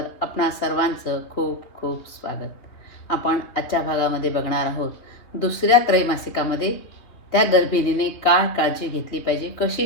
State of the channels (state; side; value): late; right; 3.2 ms